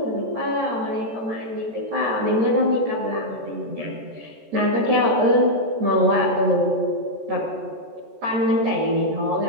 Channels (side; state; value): left; late; 14 ms